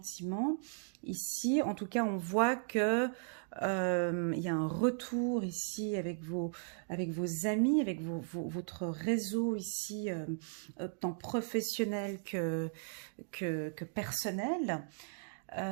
Ici, en tout cas, on voit que il y a un retour ici avec vos amis, avec votre réseau ici, tant professionnel que personnel.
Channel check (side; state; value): left; silent; digital silence